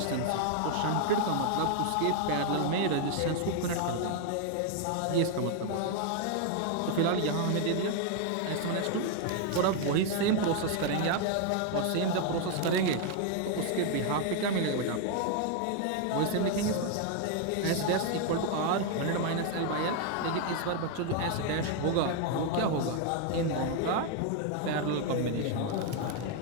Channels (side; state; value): both; different; correlation 0.00